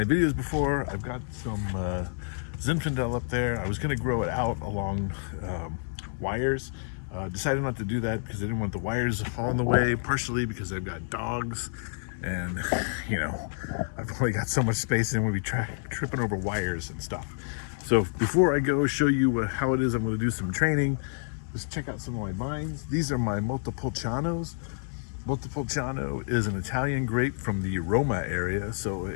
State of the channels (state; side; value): silent; right; digital silence